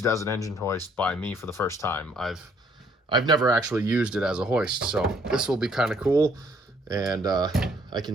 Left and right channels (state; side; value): normal; both; correlation 0.63